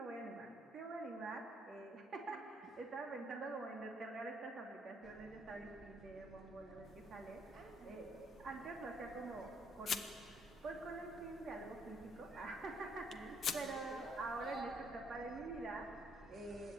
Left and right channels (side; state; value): both; normal; correlation 0.68